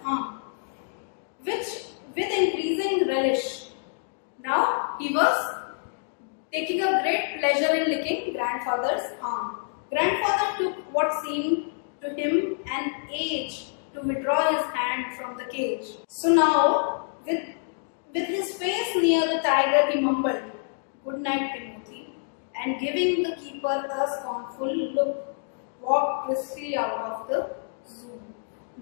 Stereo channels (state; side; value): silent; right; digital silence